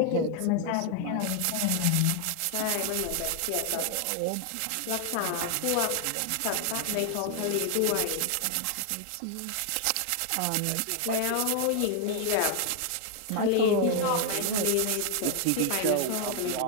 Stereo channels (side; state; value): both; different; correlation 0.00